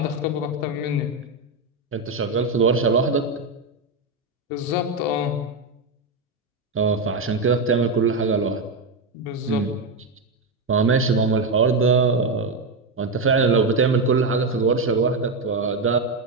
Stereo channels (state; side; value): quieter; left; 3.3 dB